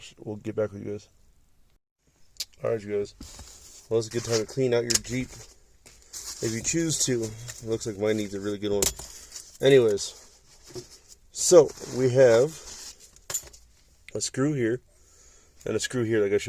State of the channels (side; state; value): both; identical; correlation 1.00